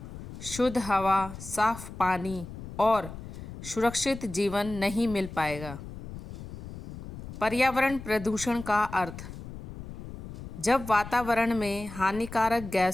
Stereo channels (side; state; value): left; noise; rumble, 11 dB below the sound